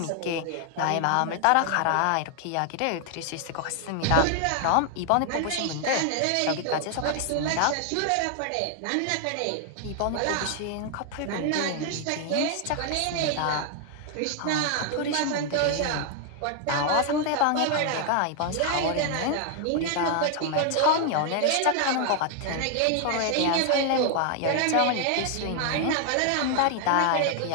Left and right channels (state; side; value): different; both; correlation 0.00